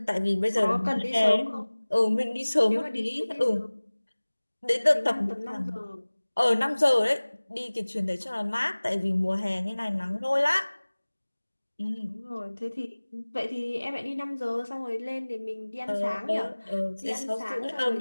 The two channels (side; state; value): both; inverted; correlation -1.00